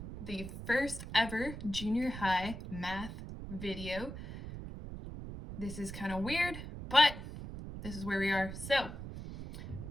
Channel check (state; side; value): noise; right; rumble, 9 dB below the sound